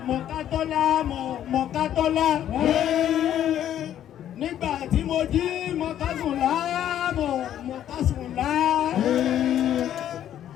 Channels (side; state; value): right; quieter; 10.9 dB